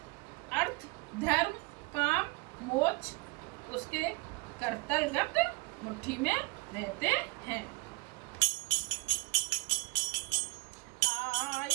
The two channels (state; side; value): quieter; left; 26.5 dB